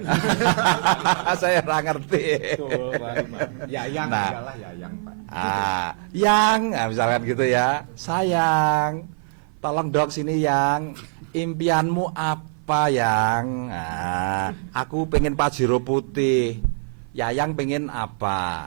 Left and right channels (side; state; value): left; silent; 55 dB below the other